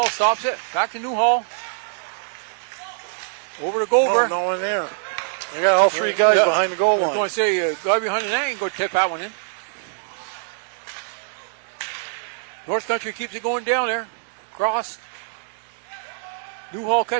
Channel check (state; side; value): silent; left; digital silence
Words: stops it. Back to Newhall. Over to Gover. Oh, no one there. They got all three guys behind the goal line. I was going to say, guy behind the net ain't going to tip that one in. North Country keeps it going down there. Cross. Newhall